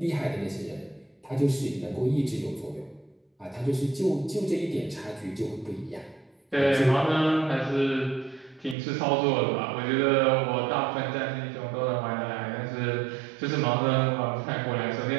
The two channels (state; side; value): drops out; left; at 8.8 s